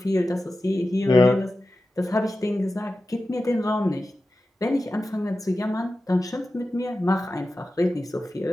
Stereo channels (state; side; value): normal; both; correlation 0.93